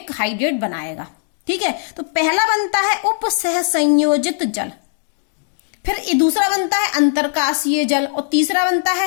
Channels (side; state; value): right; silent; digital silence